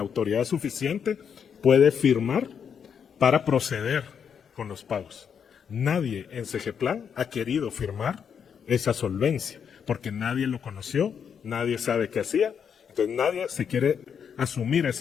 autoridad suficiente puede firmar para proceder con los pagos. Nadie en Segeplan ha querido firmar esa solvencia, porque nadie lo conoció, nadie sabe qué hacía, entonces nadie se quiere asumir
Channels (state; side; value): quieter; right; 7.4 dB